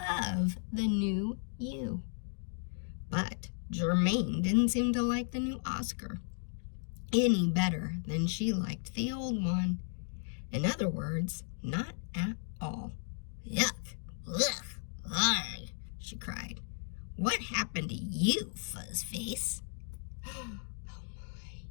the new you. But Germaine didn't seem to like the new Oscar any better than she liked the old one. In other words, not at all. Yuck! Ugh! Arg! She cried. What happened to you, Fuzzface? Oh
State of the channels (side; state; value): right; silent; 54 dB below the other